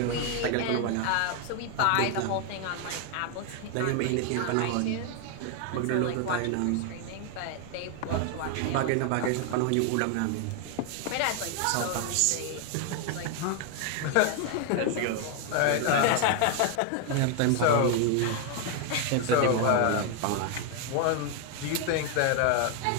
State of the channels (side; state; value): both; different; correlation 0.01